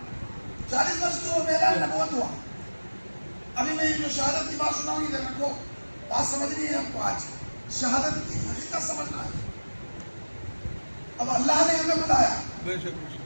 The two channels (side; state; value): both; inverted; correlation -1.00